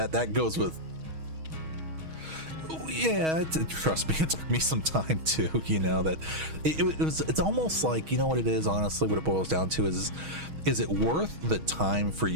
goes with, yeah, trust me, it took me some time too, that it's almost like, what it is, honestly, what it boils down to is it worth the time for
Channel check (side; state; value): left; late; 6.3 ms